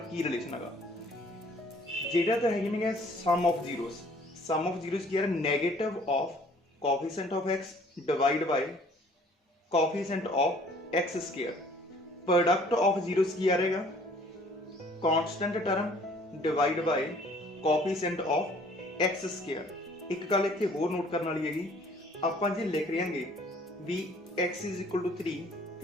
ਕੀ ਰਿਲੇਸ਼ਨ ਹੈਗਾ। ਜਿਹੜਾ ਤਾਂ ਹੈਗੇ ਨੇ ਸਮ of zeros, sum of zeros ਕੀ ਹੈ negative of coefficient of x divide by coefficient of x²। Product of zeros ਕੀ ਆ ਰਹੇਗਾ, constant term divide by coefficient of x²। ਇੱਕ ਗੱਲ ਇੱਥੇ ਹੋਰ ਨੋਟ ਕਰਨ ਵਾਲੀ ਹੈਗੀ, ਆਪਾਂ ਜੇ ਲਿਖ ਰਹਾਂਗੇ ਵੀ x ਇਜ਼ ਇਕੁਅਲ ਟੂ 3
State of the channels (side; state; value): both; normal; correlation 0.56